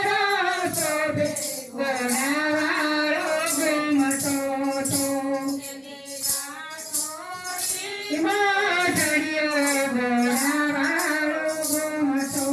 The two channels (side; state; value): both; identical; correlation 1.00